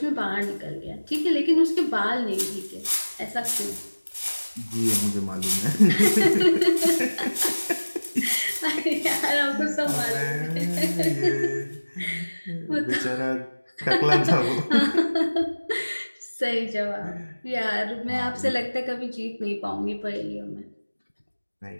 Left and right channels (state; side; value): inverted; both; correlation -1.00